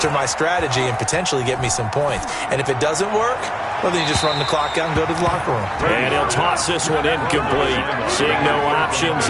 my strategy and potentially get me some points. And if it doesn't work, well, then you just run the clock out and go to the locker room. And he'll toss this one incomplete. Seeing no options,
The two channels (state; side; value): identical; both; correlation 1.00